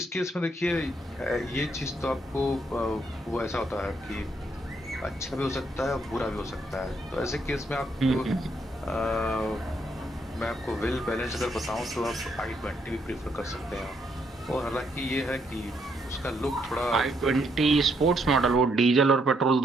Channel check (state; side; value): normal; both; correlation 0.74